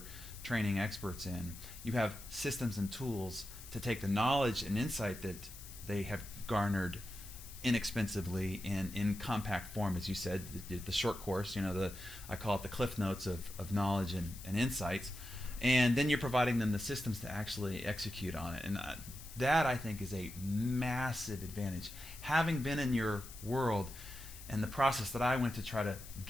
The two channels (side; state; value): left; noise; hiss, 15 dB below the sound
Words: training experts in, you have systems and tools to take the knowledge and insight that they have garnered inexpensively and in compact form, as you said, the short course, I call it the cliff notes of knowledge and insights, and then you're providing them the systems to actually execute on it. And that, I think, is a massive advantage. Having been in your world and the process that I went to try to